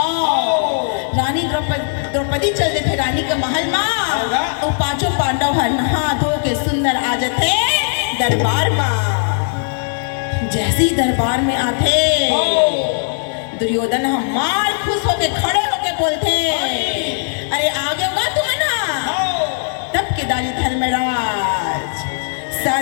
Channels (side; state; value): right; silent; digital silence